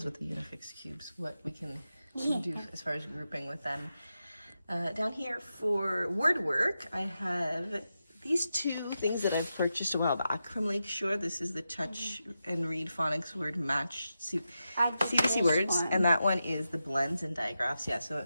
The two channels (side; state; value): both; inverted; correlation -0.89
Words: with the Unifix cubes, what we can do as far as grouping with them. Down here for word work, I have these 2 things that I've purchased a while back from Lakeshore. This is the Touch and Read Phonics Word Match CBC Words, and that one is the blends and digraphs. Yeah, so